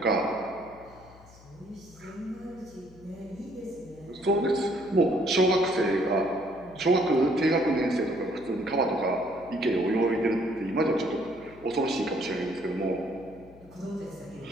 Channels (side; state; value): left; noise; hum, 23 dB below the sound